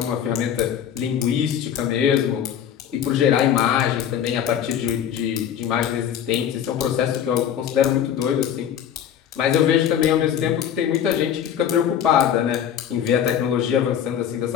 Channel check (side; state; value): right; quieter; 9.3 dB